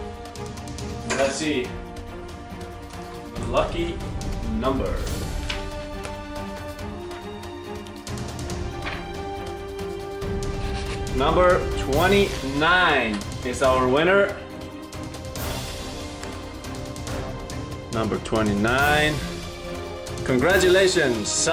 And let's see. The lucky number. Number 29 is our winner. Number 29. Congratulations,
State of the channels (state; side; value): identical; both; correlation 1.00